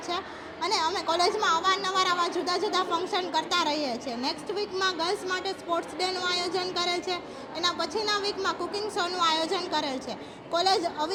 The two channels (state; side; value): identical; both; correlation 1.00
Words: છે. અને અમે કોલેજમાં અવારનવાર આવા જુદા જુદા ફંક્શન કરતા રહીએ છીએ. નેક્સ્ટ વીકમાં ગર્લ્સ માટે સ્પોર્ટ્સ ડેનું આયોજન કરે છે. એના પછીના વીકમાં કુકિંગ શોનું આયોજન કરે છે. કોલેજ